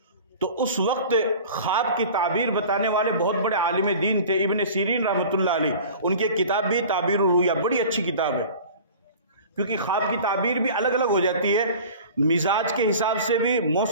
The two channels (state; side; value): inverted; both; correlation -0.41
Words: تو اس وقت خواب کی تعبیر بتانے والے بہت بڑے عالم دین تھے ابن سیرین رحمۃ اللہ علیہ. ان کی کتاب بھی تعبیر الرؤیا بڑی اچھی کتاب ہے، کیونکہ خواب کی تعبیر بھی الگ الگ ہو جاتی ہے، مزاج کے حساب سے بھی،